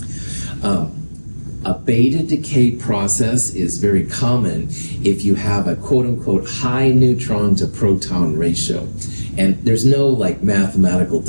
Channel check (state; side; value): inverted; both; correlation -1.00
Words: A beta decay process is very common if you have a quote-unquote high neutron to proton ratio. And there's no like mathematical